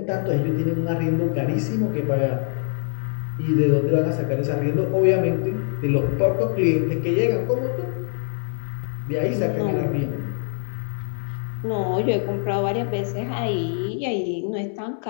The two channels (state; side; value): silent; right; 62 dB below the other